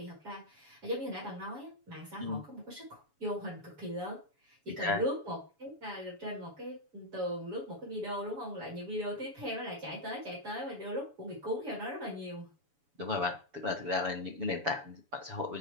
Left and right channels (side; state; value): left; late; 7.1 ms